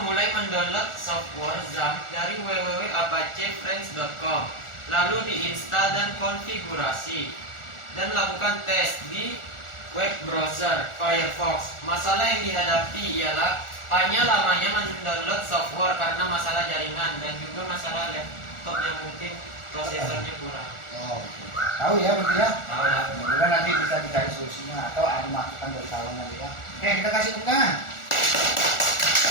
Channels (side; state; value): right; late; 1.4 ms